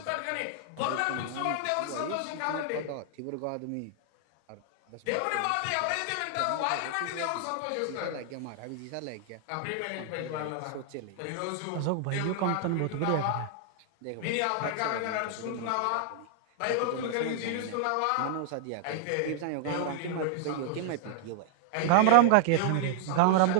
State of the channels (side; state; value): both; different; correlation 0.00